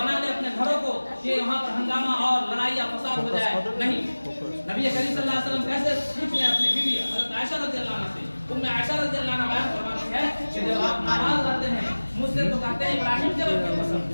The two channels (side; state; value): both; inverted; correlation -1.00